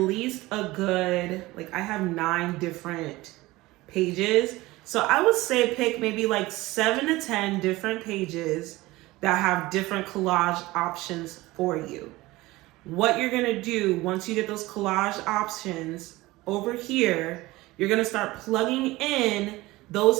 a good, like I have 9 different pages. So I would say pick maybe like 7 to 10 different pages that have different collage options for you. What you're gonna do once you get those collage options over here, you're gonna start plugging in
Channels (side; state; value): left; quieter; 19.6 dB